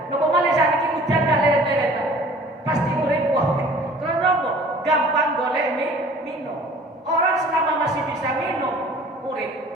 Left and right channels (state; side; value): normal; both; correlation 0.49